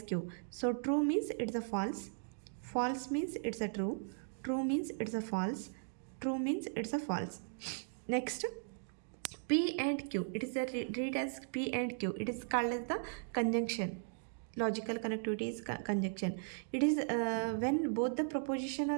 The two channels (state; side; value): silent; left; digital silence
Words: Q. So true means it's a false. False means it's a true. True means it's a false. True means it's a false. Next, P and Q. It is read as P and Q. It is called as the conjunction. Logical connectivity is conjunction. It is when both the proposition